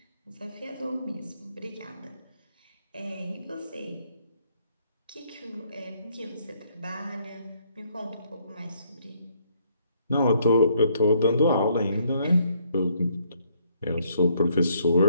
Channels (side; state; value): both; inverted; correlation -0.69